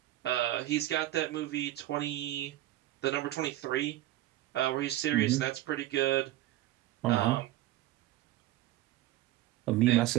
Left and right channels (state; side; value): quieter; left; 15.1 dB